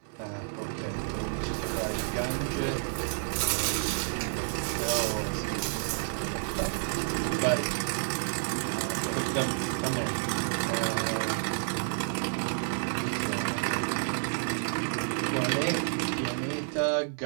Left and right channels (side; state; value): left; silent; 58 dB below the other